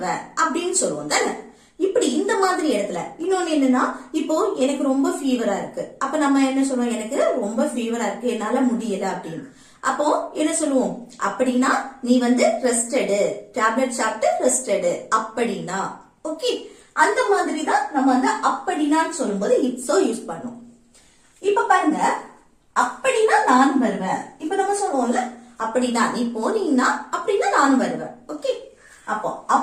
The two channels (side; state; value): both; identical; correlation 1.00